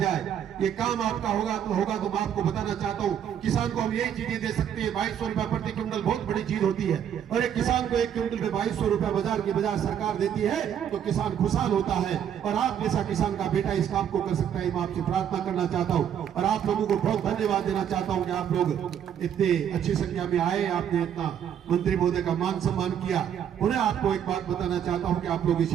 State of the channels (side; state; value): left; quieter; 9.2 dB